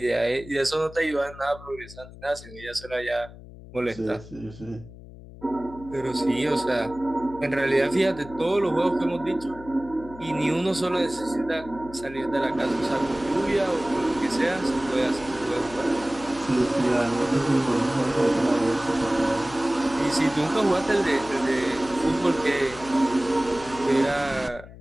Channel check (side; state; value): left; noise; hum, 17 dB below the sound